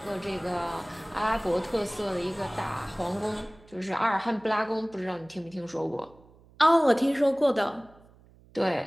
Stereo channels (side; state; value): right; noise; hum, 26 dB below the sound